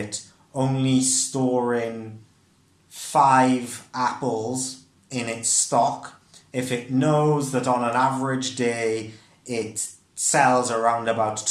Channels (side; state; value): both; identical; correlation 1.00